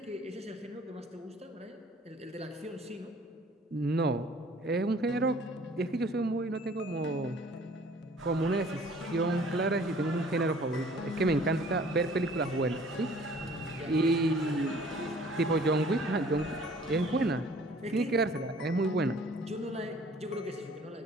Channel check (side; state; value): both; normal; correlation 0.53